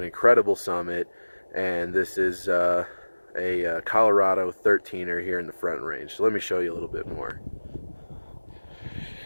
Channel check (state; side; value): inverted; both; correlation -1.00